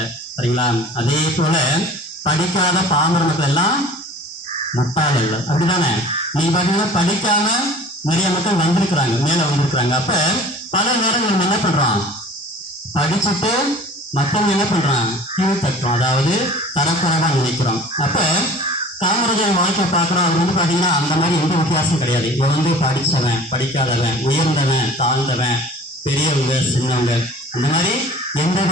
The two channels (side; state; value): both; normal; correlation 0.45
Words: சரிங்களா? அதே போல படிக்காத பாமர மக்கள் எல்லாம் முட்டாள் அல்ல, அப்படிதானே? நீங்க பார்த்தீங்கன்னா படிக்காம நிறைய மக்கள் வந்திருக்கிறாங்க, மேல வந்திருக்கிறாங்க. அப்ப பல நேரங்கள் நம்ம என்ன பண்றோம், படிச்சுட்டு மற்றவங்க என்ன பண்றான், கீழ் தட்டுறோம், அதாவது தரக்குறைவா நினைக்கிறோம். அப்ப காமராஜர் வாழ்க்கை பார்க்குறோம், அது பார்த்தீங்கன்னா அந்த மாதிரி எந்த வித்தியாசம் கிடையாது. இவன் படித்தவன், படிக்காதவன், உயர்ந்தவன், தாழ்ந்தவன், பெரியவங்க, சின்னவங்க, அந்த மாதிரி எந்த